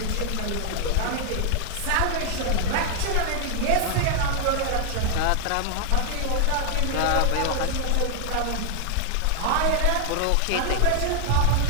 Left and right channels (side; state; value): both; different; correlation 0.00